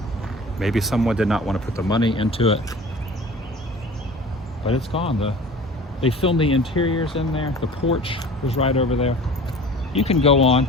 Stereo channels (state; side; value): normal; both; correlation 0.42